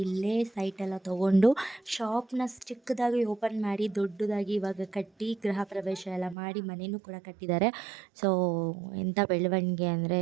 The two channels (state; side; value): drops out; left; at 6.4 s